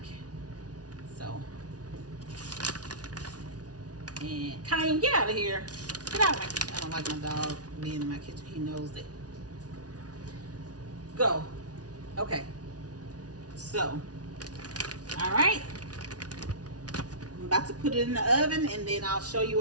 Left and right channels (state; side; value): late; left; 0.68 ms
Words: So, and Cayenne, get out of here. Get out of my don't like my dog being in my kitchen. He knows it. Go. Okay. So, all right. I'm about to put it in the oven, and then I'll show